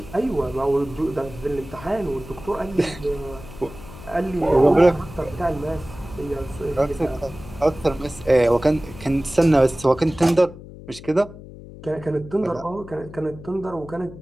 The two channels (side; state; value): left; noise; hum, 16 dB below the sound